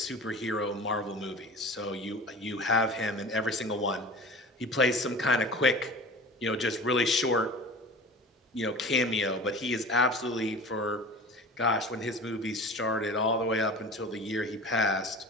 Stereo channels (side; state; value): both; normal; correlation 0.37